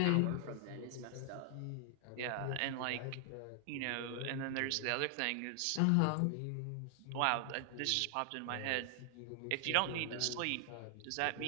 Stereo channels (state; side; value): different; both; correlation 0.00